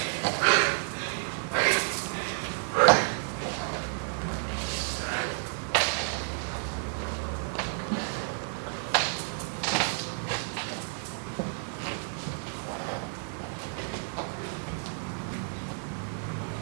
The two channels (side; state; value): left; silent; 57 dB below the other